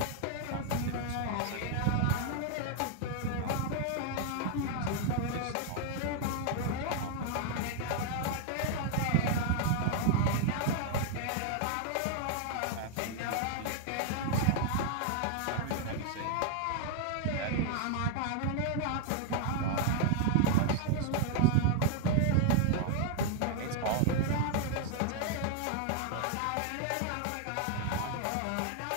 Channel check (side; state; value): both; different; correlation 0.00